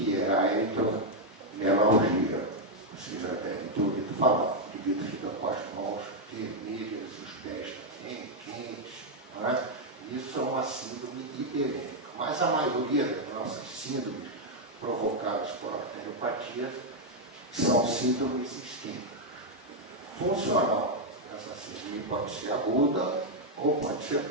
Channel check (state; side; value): normal; both; correlation 0.00